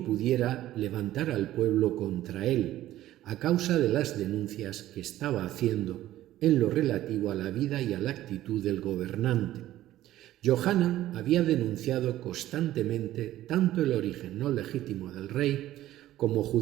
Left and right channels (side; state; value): left; quieter; 14.2 dB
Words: pudiera levantar al pueblo contra él, a causa de las denuncias que estaba haciendo en lo relativo a la vida y a la actitud del gobernante. Yohanan había denunciado constantemente tanto el origen no legítimo del rey, como